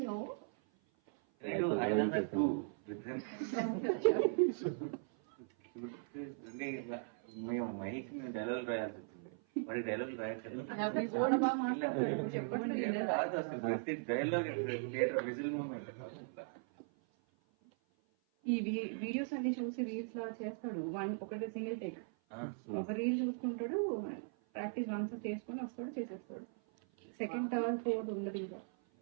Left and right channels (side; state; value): left; silent; 52 dB below the other